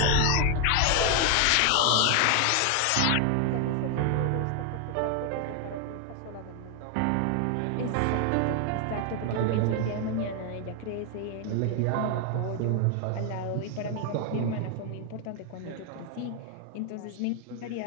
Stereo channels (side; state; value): both; different; correlation 0.00